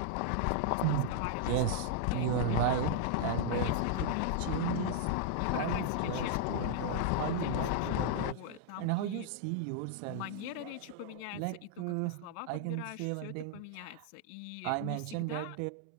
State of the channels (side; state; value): both; different; correlation -0.01